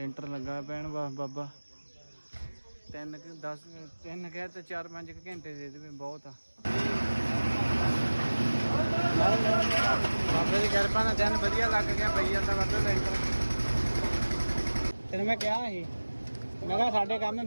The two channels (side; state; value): both; inverted; correlation -1.00